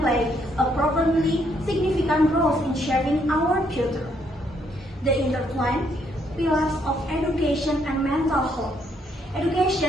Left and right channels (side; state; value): both; normal; correlation 0.72